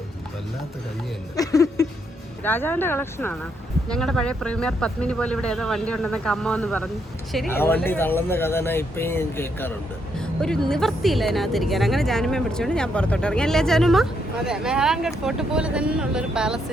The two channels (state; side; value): normal; both; correlation 0.76